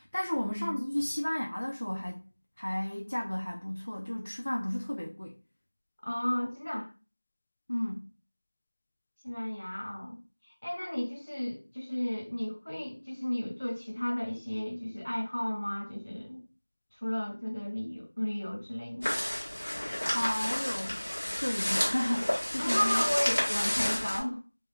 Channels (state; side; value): inverted; both; correlation -1.00